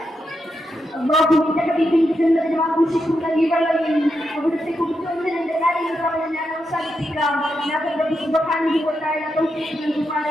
അല്ലാഹുവിന്റെ ഹബീബിന്റെ ജന്നത്തിൽ ആഘോഷിക്കുന്ന ഈ വേളയിൽ അവിടുത്തെ കുറിച്ച് ഒന്ന് രണ്ട് കാര്യങ്ങൾ പറഞ്ഞ് ഞാൻ അവസാനിപ്പിക്കാം. ഞങ്ങളുടെ സുബ്ഹാനഹു വ തആല തൗഫീഖ്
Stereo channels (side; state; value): both; normal; correlation 0.84